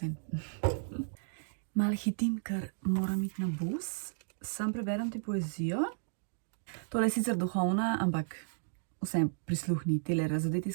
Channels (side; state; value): left; silent; digital silence